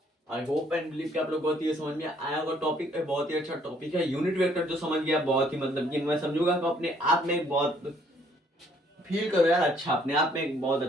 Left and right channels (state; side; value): normal; both; correlation 0.63